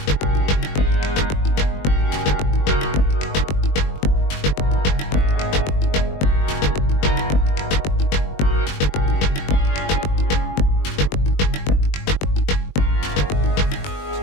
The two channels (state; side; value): late; right; 21 ms